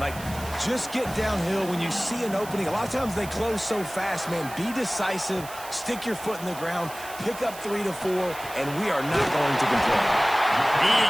just get downhill when you see an opening. A lot of times they close so fast, man. Be decisive, stick your foot in the ground, pick up 3 to 4, and we are not going to complain. He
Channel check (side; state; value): right; noise; hiss, 15 dB below the sound